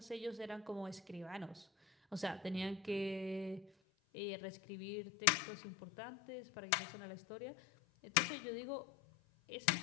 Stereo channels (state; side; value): drops out; right; at 3.7 s